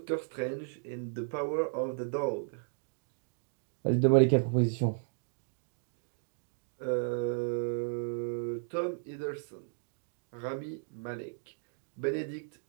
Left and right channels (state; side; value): silent; left; digital silence